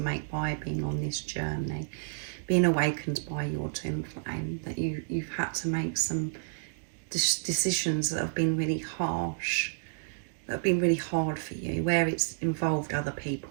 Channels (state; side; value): silent; left; digital silence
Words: make by being on this journey, being awakened by your twin flame, that you've had to make some decisions that have been really harsh, that have been really hard for you, where it's involved other people,